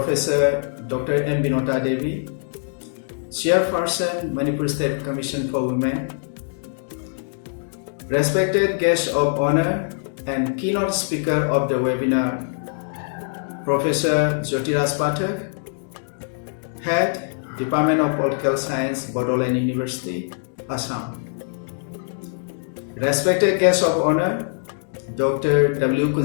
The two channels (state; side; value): silent; right; digital silence